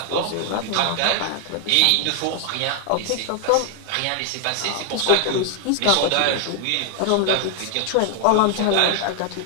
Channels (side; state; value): both; different; correlation 0.00